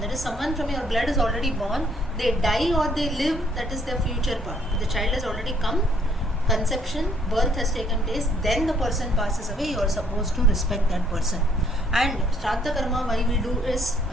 is, someone from your blood is already born. They die or they live, that is their future part. The child has already come, conception, birth has taken place, then the person passes away, you are supposed to respect that person. And Shraddha Karma, why we do is, a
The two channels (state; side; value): normal; both; correlation 0.65